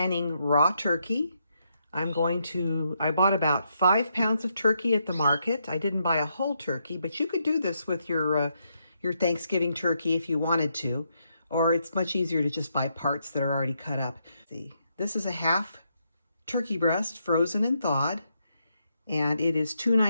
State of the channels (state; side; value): inverted; both; correlation -0.79